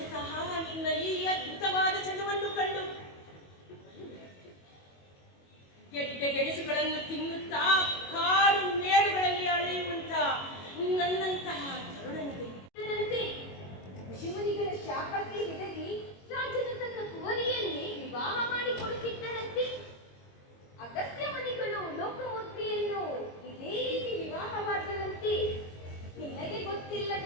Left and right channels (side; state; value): right; late; 22 ms